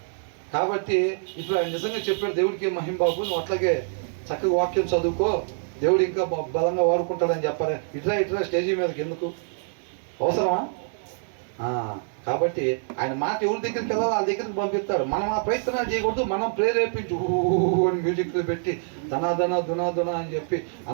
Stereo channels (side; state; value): left; silent; digital silence